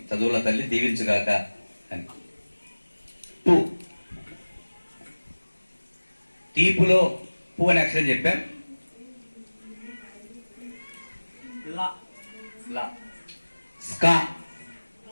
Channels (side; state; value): both; inverted; correlation -1.00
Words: చదువుల తల్లి దీవించుగాక అని. తీపులో పూ అనే అక్షరం చెప్పాం.